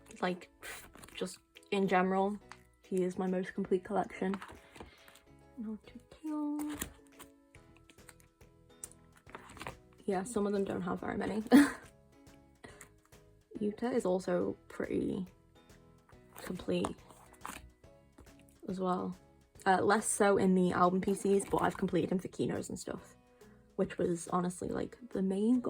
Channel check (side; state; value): both; identical; correlation 1.00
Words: Like, just in general, he is my most complete collection. Not to Tail. Yeah, some of them don't have very many. Yuta is also pretty complete as well. Less so in the album PCs, but I've completed him for Kinos and stuff, which was honestly like the main